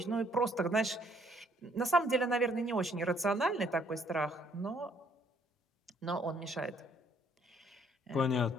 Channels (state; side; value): normal; both; correlation 0.65